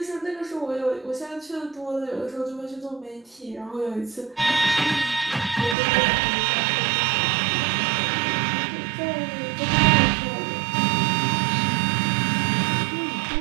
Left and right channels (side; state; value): left; drops out; at 5.8 s